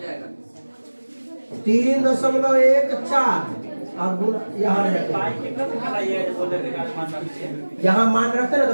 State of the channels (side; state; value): both; inverted; correlation -1.00